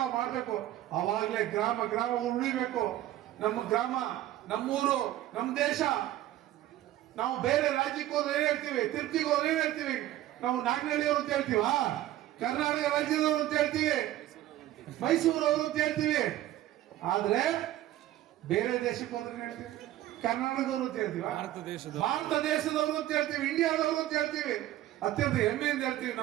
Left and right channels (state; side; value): quieter; left; 14.1 dB